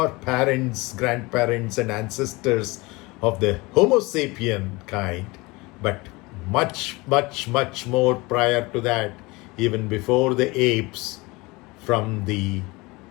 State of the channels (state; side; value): quieter; right; 23.7 dB